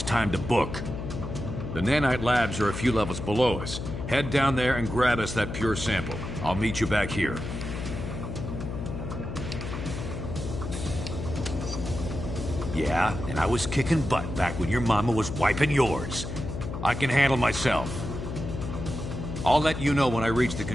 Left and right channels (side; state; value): left; noise; hum, 6 dB below the sound